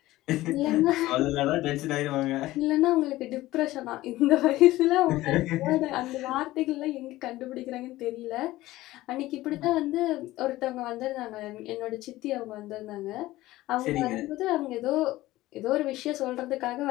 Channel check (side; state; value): right; quieter; 17.0 dB